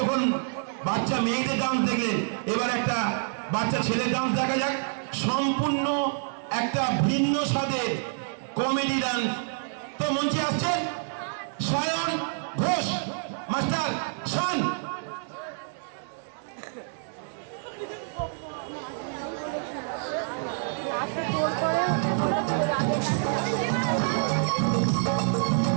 বাচ্চা মেয়েদের ডান্স দেখলেন, এবার একটা বাচ্চা ছেলের ডান্স দেখা যাক। সম্পূর্ণ একটা ভিন্ন স্বাদের কমেডি ডান্স। তো মঞ্চে আসছেন সায়ন ঘোষ মাস্টার শান।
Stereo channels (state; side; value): silent; left; 60 dB below the other